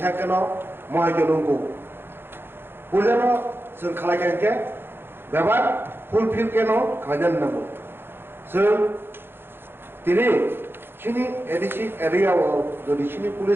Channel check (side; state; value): left; late; 0.10 ms